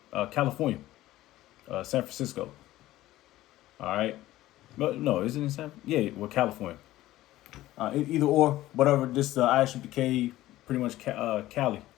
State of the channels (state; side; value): quieter; right; 15.7 dB